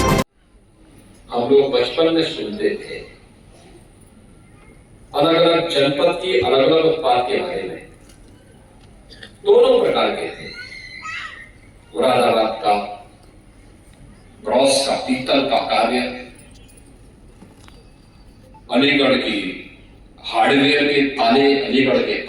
हम लोग बचपन में सुनते थे अलग अलग जनपद की अलग अलग उत्पाद के बारे में। दोनों प्रकार के थे, मुरादाबाद का ब्रॉस का पीतल का कार्य, अलीगढ़ की हार्डवेयर के ताले, अलीगढ़ के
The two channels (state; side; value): identical; both; correlation 1.00